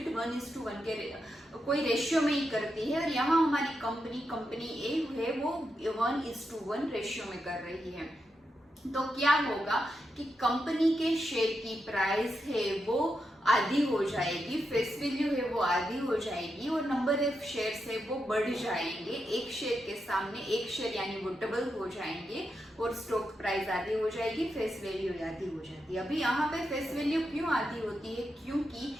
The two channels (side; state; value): both; normal; correlation 0.86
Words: 1:1 के कोई रेशियो में ही करती है और यहाँ हमारी कंपनी ए है वो 1:1 रेशियो में कर रही है। तो क्या होगा कि कंपनी के शेयर की प्राइस है वो आधी हो जाएगी, फेस वैल्यू है वो आधी हो जाएगी और नंबर ऑफ शेयर्स है वो बढ़ जाएंगे। एक शेयर के सामने एक शेयर यानी वो डबल हो जाएंगे और स्टॉक प्राइस आधी हो जाएगी, फेस वैल्यू आधी हो जाती है। अभी यहाँ पे फेस वैल्यू क्यों आधी होती है? क्योंकि